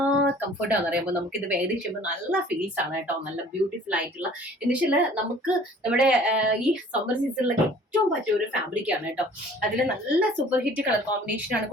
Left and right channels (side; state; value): both; normal; correlation 0.51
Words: കംഫർട്ടാന്ന് പറയുമ്പോൾ നമുക്ക് ഇത് വേദി ചെയ്യുമ്പോൾ നല്ല ഫീൽസ് ആണ് കേട്ടോ. നല്ല ബ്യൂട്ടിഫുൾ ആയിട്ടുള്ള എന്നുവെച്ചാൽ നമുക്ക് നമ്മുടെ ഈ സമ്മർ സീസണിലൊക്കെ ഏറ്റവും പറ്റിയ ഒരു ഫാബ്രിക് ആണ് കേട്ടോ. അതിൽ നല്ല സൂപ്പർ ഹിറ്റ് കളർ കോമ്പിനേഷൻ ആണ്